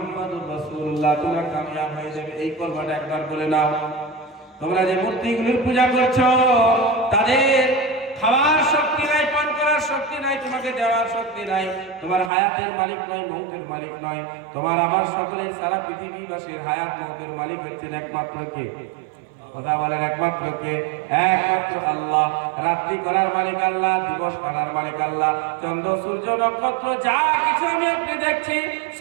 রাসূলুল্লাহ, তোমরা কামিয়াব হয়ে যাবে। এই কলমাটা একবার বলে নাও। তোমরা যে মূর্তিগুলির পূজা করছো, তাদের খাওয়ার শক্তি নাই, পান করার শক্তি নাই, তোমাকে দেওয়ার শক্তি নাই, তোমার হায়াতের মালিক নয়, মৌতের মালিক নয়, তোমার আমার সকলের সারা পৃথিবীবাসীর হায়াত মৌতের মালিক হচ্ছেন একমাত্র কে? কথা বলেন, একমাত্র কে? একমাত্র আল্লাহ। রাত্রি করার মালিক আল্লাহ, দিবস করার মালিক আল্লাহ, চন্দ্র সূর্য নক্ষত্র যা কিছু আমি আপনি দেখছি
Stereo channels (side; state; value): left; drops out; at 12.3 s